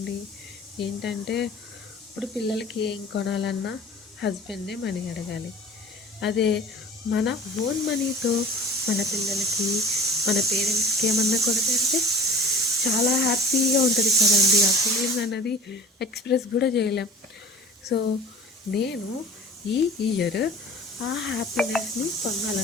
ఏంటంటే ఇప్పుడు పిల్లలకి ఏం కొనాలన్నా హస్బెండే మనీ అడగాలి. అదే మన ఓన్ మనీతో మన పిల్లలకి, మన పేరెంట్స్కి ఏమన్నా కొనిపెడితే చాలా హ్యాపీగా ఉంటుంది కదండి. ఆ ఫీలింగ్ అన్నది ఎక్స్ప్రెస్ కూడా చేయలేం. సో నేను ఈ ఇయర్ ఆ హ్యాపీనెస్ని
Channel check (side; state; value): both; normal; correlation 0.43